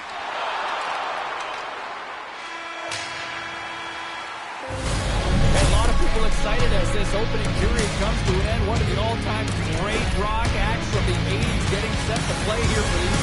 And a lot of people excited as this opening period comes to an end. One of the all-time great rock acts from the 80s getting set to play here for these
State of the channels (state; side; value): identical; both; correlation 1.00